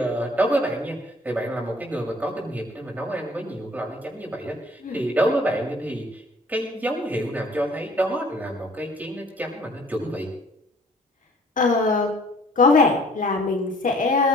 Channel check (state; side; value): normal; both; correlation 0.55